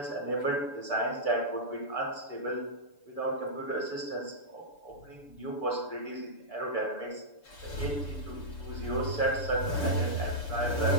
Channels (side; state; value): right; late; 6.9 ms